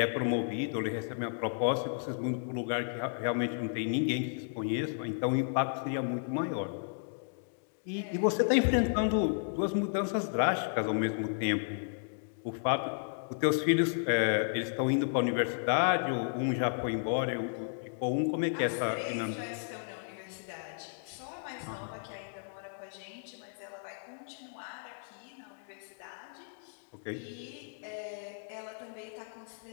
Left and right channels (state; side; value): silent; right; digital silence